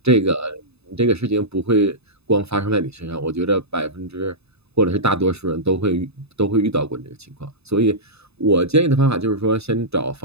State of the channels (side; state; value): left; late; 0.79 ms